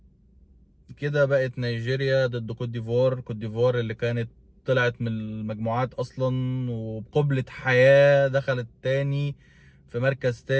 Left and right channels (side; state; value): both; identical; correlation 1.00